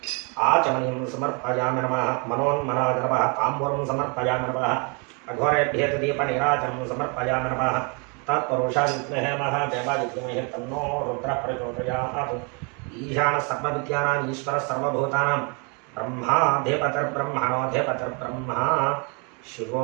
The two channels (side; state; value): left; quieter; 33.9 dB